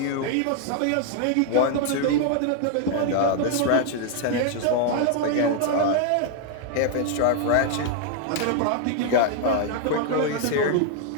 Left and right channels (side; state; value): both; different; correlation 0.00